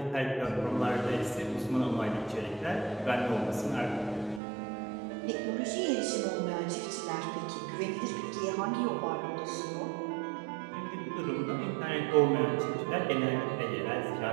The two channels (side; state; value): left; drops out; at 4.4 s